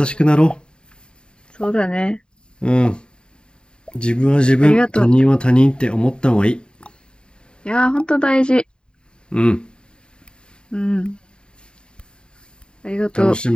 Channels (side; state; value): right; late; 0.050 ms